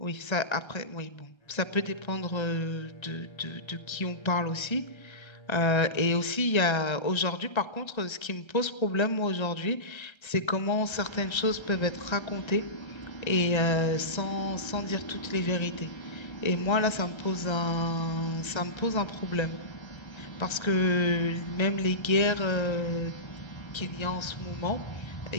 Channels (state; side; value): late; right; 1.3 ms